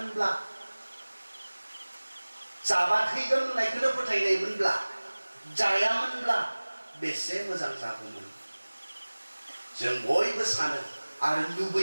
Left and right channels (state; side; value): inverted; both; correlation -1.00